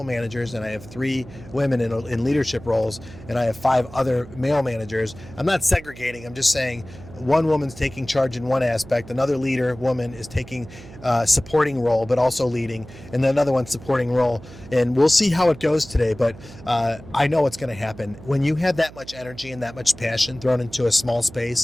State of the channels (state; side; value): noise; right; hum, 18 dB below the sound